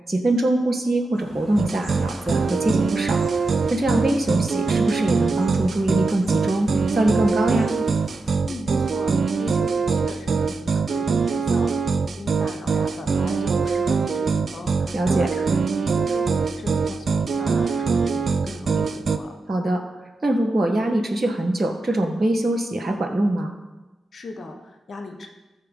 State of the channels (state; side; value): quieter; left; 3.1 dB